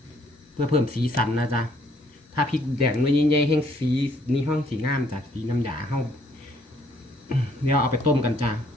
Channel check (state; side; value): normal; both; correlation 0.65